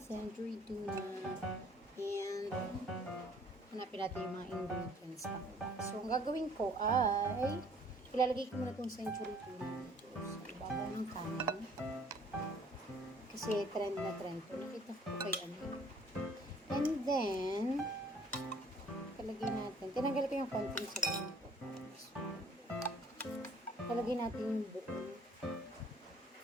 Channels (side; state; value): both; normal; correlation 0.57